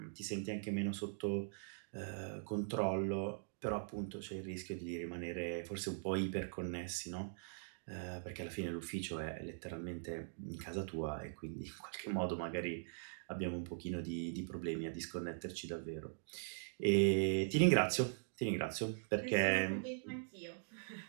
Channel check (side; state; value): left; silent; digital silence